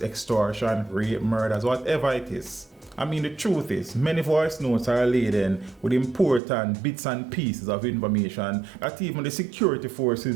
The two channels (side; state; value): left; drops out; at 6.4 s